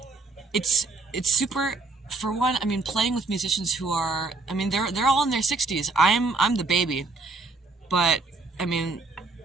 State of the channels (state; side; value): quieter; left; 3.7 dB